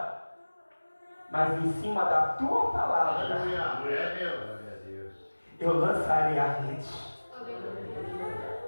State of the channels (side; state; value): both; inverted; correlation -1.00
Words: Mas em cima da tua palavra, Aleluia. É Deus. eu lançarei a rede.